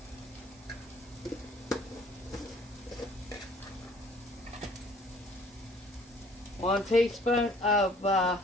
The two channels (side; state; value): both; normal; correlation 0.56